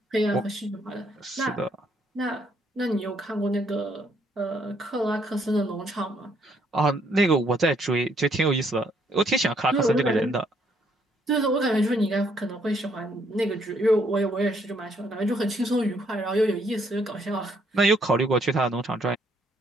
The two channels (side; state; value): both; normal; correlation 0.69